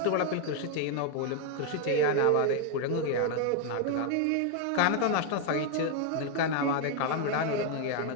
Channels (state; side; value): different; both; correlation 0.00